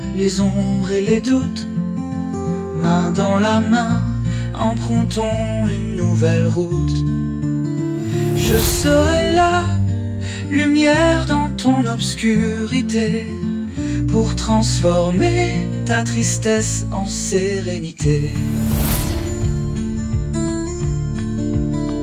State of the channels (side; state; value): both; identical; correlation 1.00